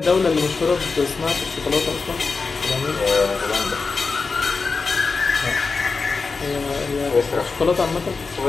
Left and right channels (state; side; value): quieter; right; 4.4 dB